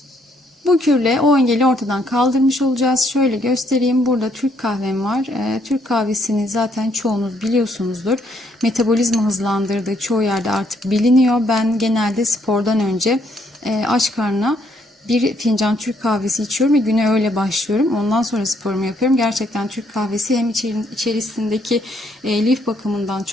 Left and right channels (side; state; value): both; normal; correlation 0.70